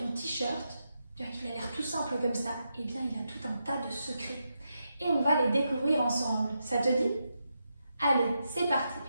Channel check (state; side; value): inverted; both; correlation -0.85